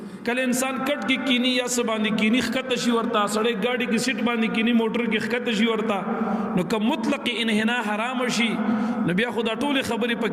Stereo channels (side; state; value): both; identical; correlation 1.00